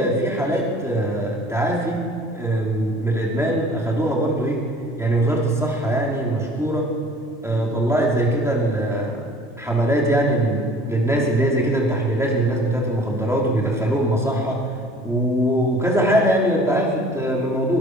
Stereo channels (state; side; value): normal; both; correlation 0.50